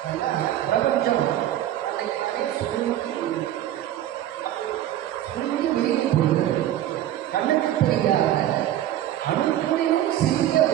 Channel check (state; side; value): quieter; left; 12.5 dB